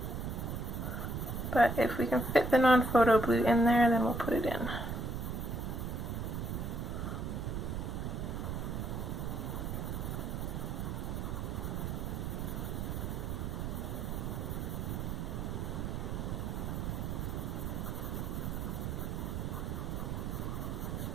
But if we can fit the non-photo blue in there, then we'll put it in.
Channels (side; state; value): right; noise; rumble, 2 dB below the sound